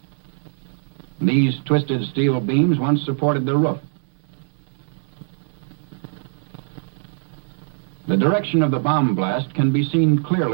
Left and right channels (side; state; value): left; silent; digital silence